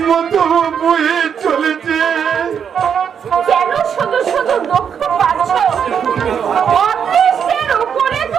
মতো বয়ে চলেছে। কেন শুধু শুধু দুঃখ পাচ্ছ? অদৃষ্টের উপরে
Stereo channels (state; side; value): quieter; left; 7.6 dB